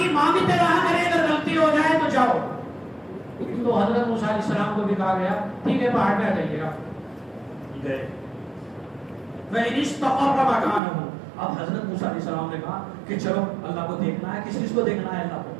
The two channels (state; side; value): drops out; left; at 10.8 s